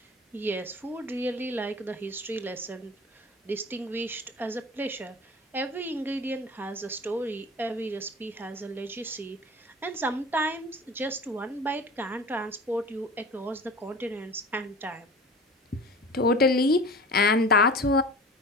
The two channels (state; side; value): normal; both; correlation 0.38